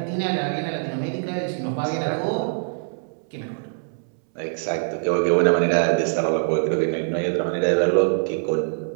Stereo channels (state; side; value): silent; left; 63 dB below the other